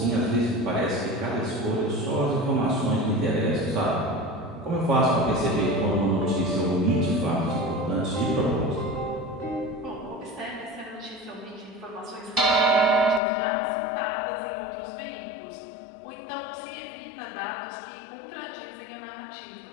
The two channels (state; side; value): drops out; right; at 13.2 s